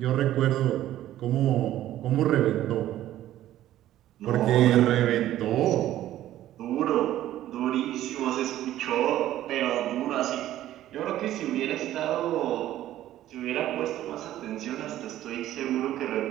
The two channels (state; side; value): quieter; left; 13.3 dB